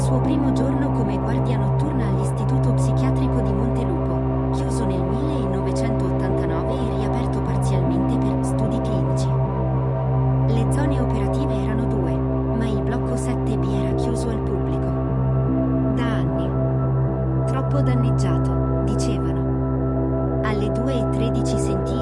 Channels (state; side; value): identical; both; correlation 1.00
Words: primo giorno come guardia notturna all'istituto psichiatrico di Montelupo, chiuso nel 1989 e riaperto parzialmente per studi clinici. Le zone operative erano 2, ma il blocco 7B era chiuso al pubblico. Da anni. Troppo danneggiato, dicevano. Alle 2:13 sentì